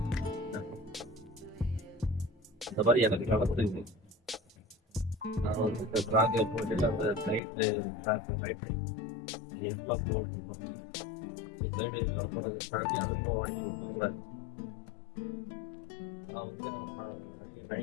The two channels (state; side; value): drops out; right; at 7.4 s